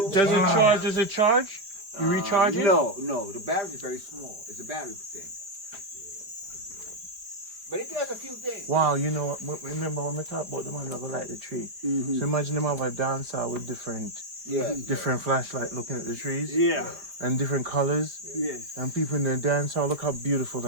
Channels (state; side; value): late; left; 4.8 ms